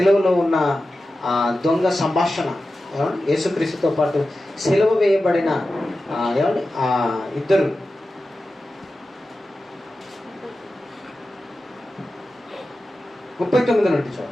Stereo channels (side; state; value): both; normal; correlation 0.93